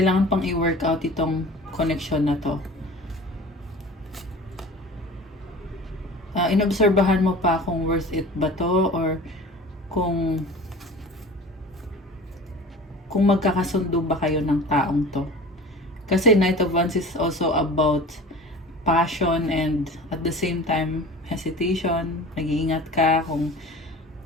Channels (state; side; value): normal; both; correlation 0.40